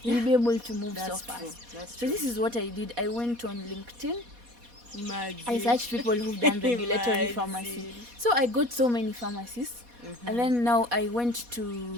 you'll be able to move so fast. So this is what I did. I went on LinkedIn. I searched people who've done regulatory pharmacy. So I got so many pharmacists. And then now I went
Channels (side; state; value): left; late; 4.2 ms